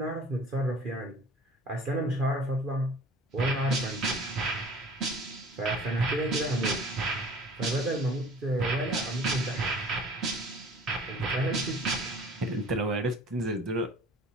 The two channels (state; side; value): normal; both; correlation 0.47